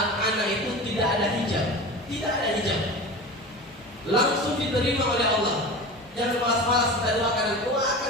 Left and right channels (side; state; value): both; normal; correlation 0.31